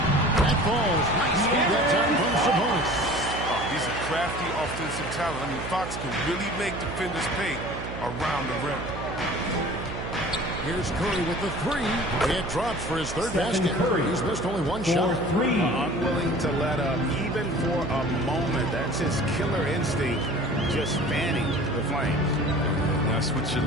That falls. Nice speed that time from Sabonis. Oh, he's a crafty offensive talent. I mean, Fox can really make defenders pay around the rim. Here's Curry with the three. It drops for his third Stephen basket. Curry. He's missed only one shot. Three. Unwilling to let up, even for a moment. That's his killer instinct, just fanning the flames. And that's what you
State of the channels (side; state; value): right; noise; hum, 8 dB below the sound